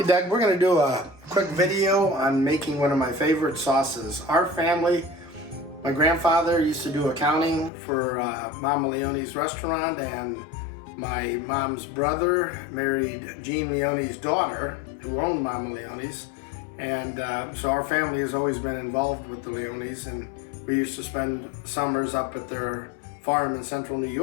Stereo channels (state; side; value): drops out; right; at 7.7 s